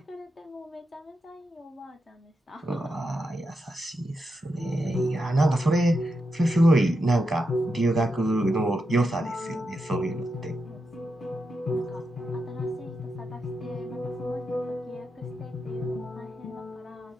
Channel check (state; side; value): normal; both; correlation 0.86